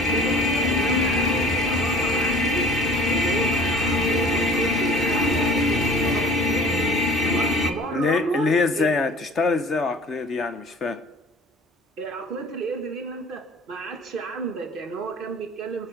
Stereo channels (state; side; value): normal; both; correlation 0.48